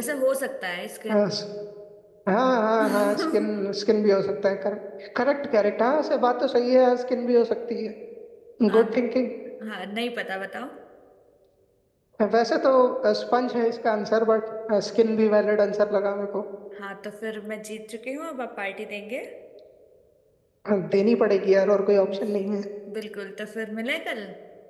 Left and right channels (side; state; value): both; identical; correlation 1.00